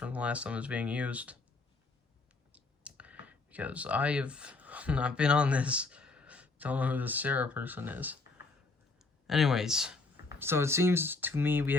the last time it was being used, because I have not been on this. Don't know who this Sarah person is. Anyways, so it seems to me we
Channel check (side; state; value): right; quieter; 3.7 dB